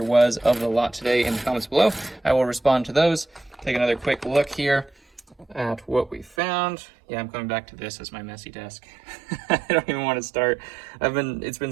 was of the lot today in the comments below. I will respond to those. Take another quick look here at what we found. Yeah, I'm coming back to this as my messy desk. I don't even want to start. It's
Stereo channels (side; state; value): left; drops out; at 6.4 s